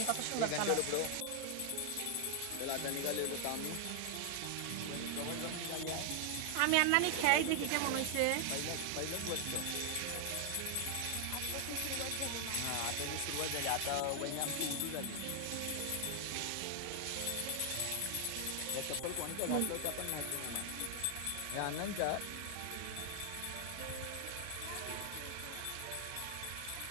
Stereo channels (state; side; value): different; both; correlation 0.00